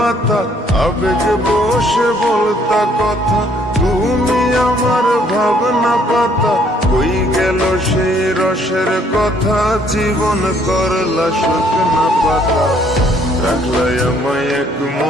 আবেগ বসে বলতা কথা, তুমি আমার ভাবনা পাতা। কই গেল সেই রসের কথা, জীবন করলা শুকনা পাতা। রাখলাই আমায় এক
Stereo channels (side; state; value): both; normal; correlation 0.64